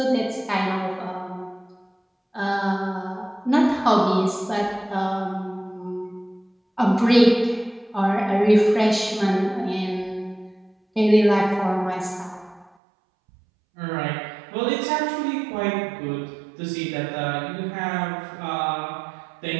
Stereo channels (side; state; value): left; drops out; at 12.7 s